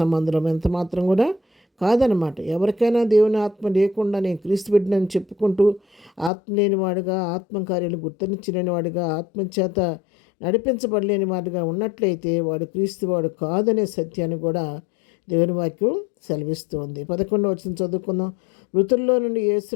ఎంత మాత్రం కూడా కాదనమాట. ఎవరికైనా దేవుని ఆత్మ లేకుండా నేను క్రీస్తు బిడ్డనని చెప్పుకుంటూ ఆత్మ లేనివాడుగా, ఆత్మకార్యాలు గుర్తించలేని వాడుగా, ఆత్మచేత నడిపించబడలేని వాడుగా ఉన్నట్లయితే వాడు క్రీస్తు వాడు కాదనే సత్యాన్ని కూడా దేవుని వాక్యం సెలవిస్తుంది. 11వ వచనం చదువుకుందాం. మృతుల్లో నుండి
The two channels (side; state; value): right; drops out; at 6.3 s